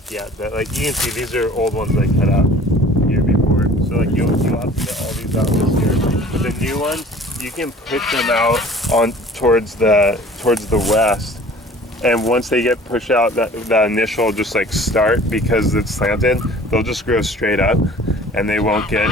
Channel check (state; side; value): normal; both; correlation 0.48